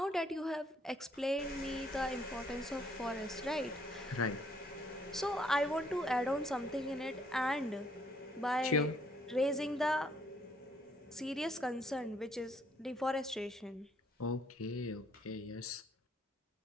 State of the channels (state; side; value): normal; both; correlation 0.67